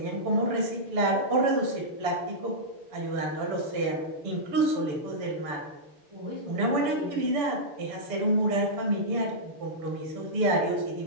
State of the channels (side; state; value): left; late; 6.9 ms